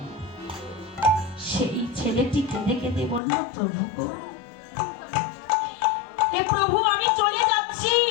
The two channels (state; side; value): drops out; right; at 3.2 s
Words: সেই ছেলেটি কেঁদে কেঁদে বলল, প্রভু গো, হে প্রভু আমি চলে যাচ্ছি,